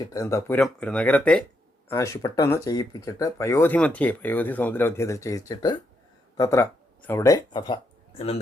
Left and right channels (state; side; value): normal; both; correlation 0.79